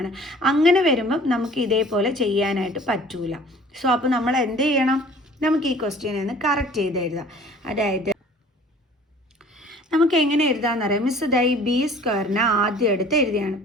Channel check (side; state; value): both; normal; correlation 0.49